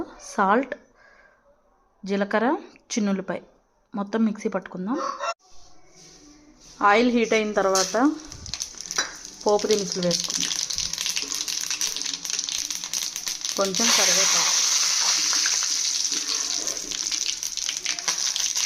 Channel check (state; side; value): identical; both; correlation 1.00